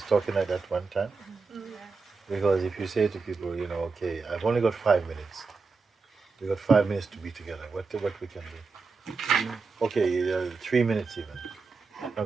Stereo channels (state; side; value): quieter; left; 4.5 dB